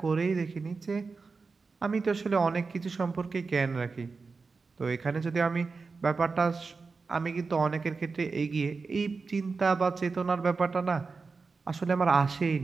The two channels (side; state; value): left; quieter; 4.4 dB